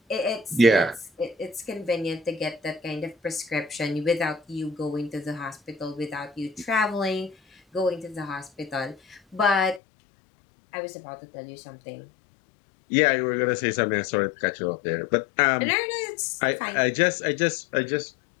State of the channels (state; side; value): drops out; right; at 9.8 s